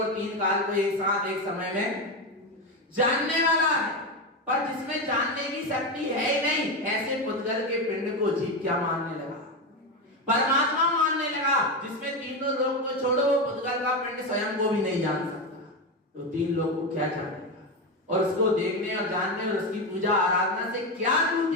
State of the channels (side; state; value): both; normal; correlation 0.14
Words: तीन काल को एक साथ एक समय में जानने वाला है। पर जिसमें जानने की शक्ति है ही नहीं, ऐसे पुद्गल के पिंड को जीव क्या मानने लगा? परमात्मा मानने लगा। जिसमें तीनों लोग को छोड़ो, वो पुद्गल का पिंड स्वयं को भी नहीं जान सकता, तो तीन लोग को क्या जानेगा? और उसको देखने और जानने और उसकी पूजा आराधना से क्या